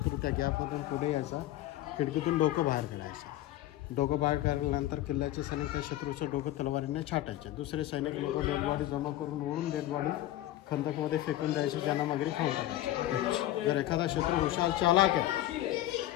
त्या गॅपमधून पुढे यायचा. खिडकीतून डोकं बाहेर काढायचं. डोकं बाहेर काढल्यानंतर किल्ल्याचे सैनिक त्या शत्रूचं डोकं तलवारीने छाटायचे. दुसरे सैनिक लोक डेडबॉडी जमा करून ओढून डेडबॉडी खंदकमध्ये फेकून द्यायचे. त्यांना मगरी खाऊन टाकायचे. जर एखादा शत्रू हुशार चालाक आहे,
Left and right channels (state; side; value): quieter; right; 14.4 dB